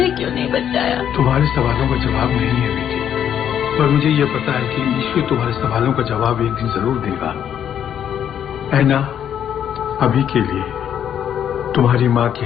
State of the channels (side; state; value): right; quieter; 9.4 dB